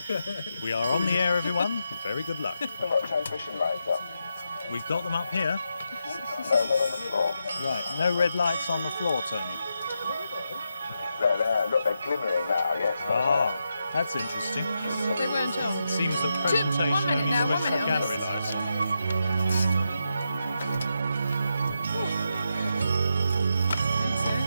We are on the air, everyone. Very good luck. Transmission lights up. We've got them up here. No, not on the floor. Right, no red lights on the floor, Tony. There, look, they're glimmering now, yes. Ah, that's interesting. They weren't on. Seems the 1 presentation minute only now, 1 switched minute the on gallery this. lights.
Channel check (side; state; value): both; inverted; correlation -0.85